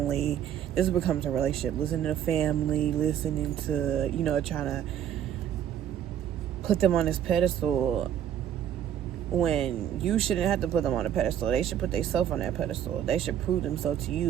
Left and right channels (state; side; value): quieter; left; 9.9 dB